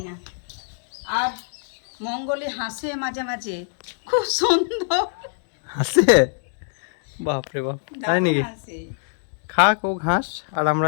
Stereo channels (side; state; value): right; silent; digital silence